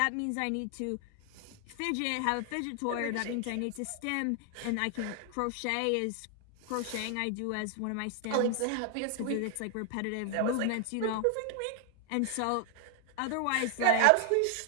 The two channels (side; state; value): both; different; correlation 0.00